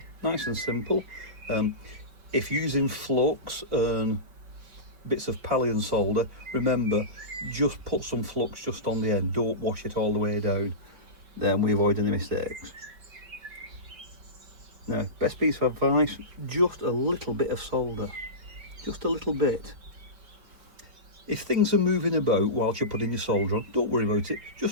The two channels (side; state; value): left; late; 5.0 ms